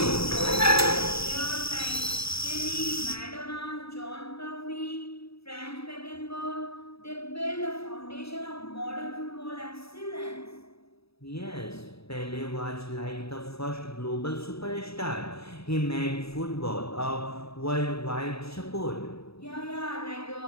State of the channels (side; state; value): right; late; 0.77 ms